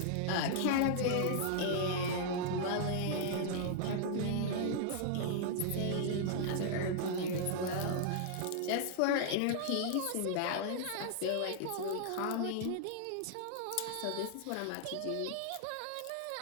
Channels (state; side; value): different; both; correlation -0.01